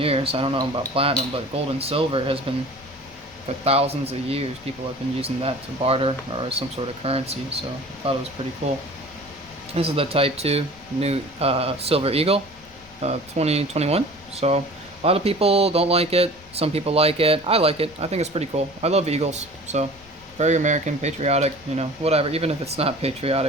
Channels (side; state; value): left; noise; rumble, 24 dB below the sound